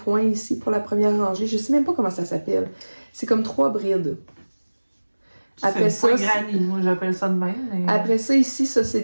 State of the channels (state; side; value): inverted; both; correlation -1.00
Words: ici pour la première rangée. Je sais même pas comment ça s'appelle. C'est comme 3 brides. Après ça, granny, moi j'appelle ça de même. Mais... Après ça, ici, ça c'est